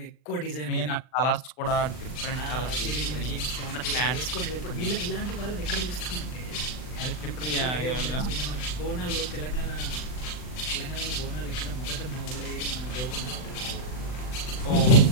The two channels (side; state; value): right; late; 39 ms